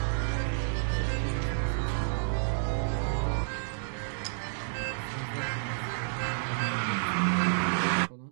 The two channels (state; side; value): silent; left; digital silence